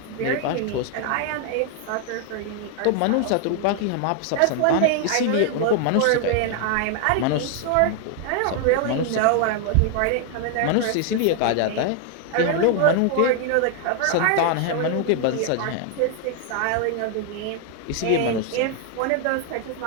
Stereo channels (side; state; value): both; different; correlation 0.00